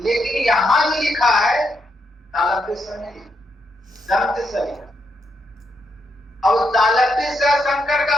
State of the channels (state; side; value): normal; both; correlation 0.78